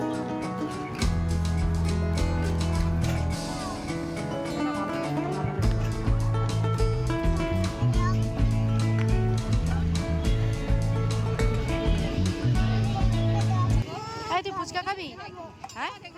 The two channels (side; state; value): both; identical; correlation 1.00